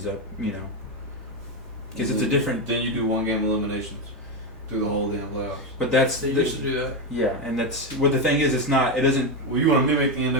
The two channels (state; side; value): normal; both; correlation 0.10